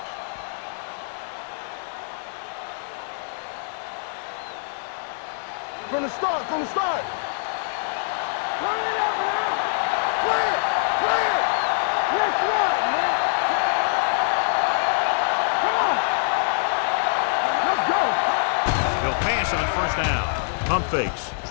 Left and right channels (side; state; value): right; silent; digital silence